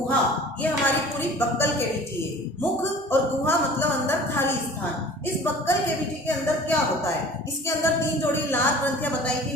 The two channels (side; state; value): both; normal; correlation 0.44